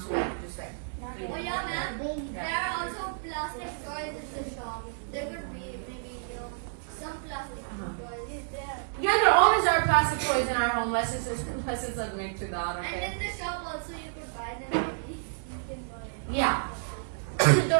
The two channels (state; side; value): silent; left; digital silence